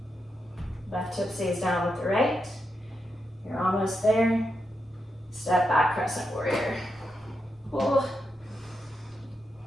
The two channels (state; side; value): normal; both; correlation 0.85